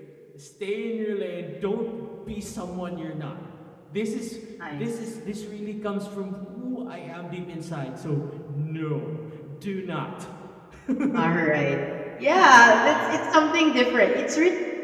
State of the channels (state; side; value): identical; both; correlation 1.00